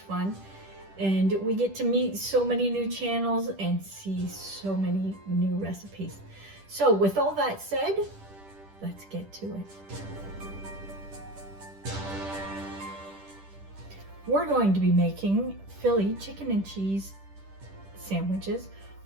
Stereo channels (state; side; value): late; left; 10 ms